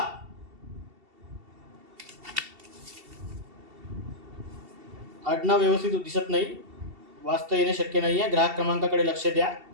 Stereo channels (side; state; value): left; late; 2.7 ms